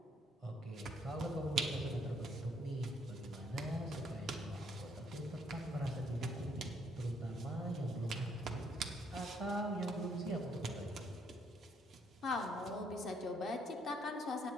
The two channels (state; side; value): normal; both; correlation 0.69